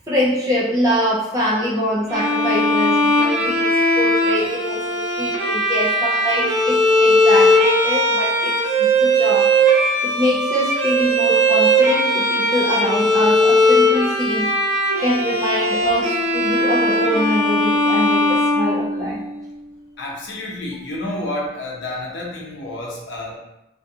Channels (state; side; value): normal; both; correlation 0.43